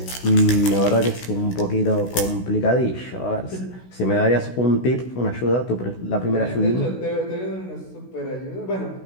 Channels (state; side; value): late; right; 16 ms